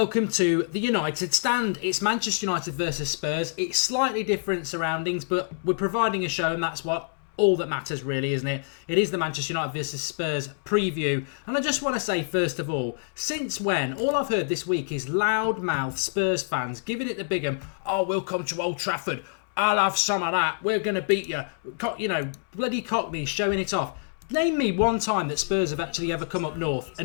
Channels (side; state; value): right; silent; digital silence